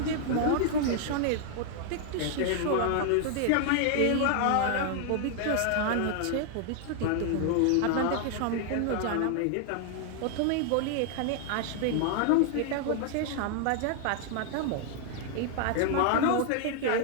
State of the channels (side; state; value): both; different; correlation 0.00